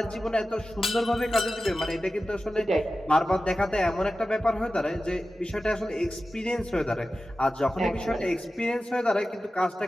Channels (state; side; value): normal; both; correlation 0.94